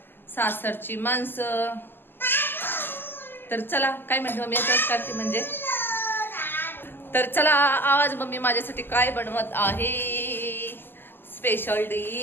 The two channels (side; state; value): right; late; 0.097 ms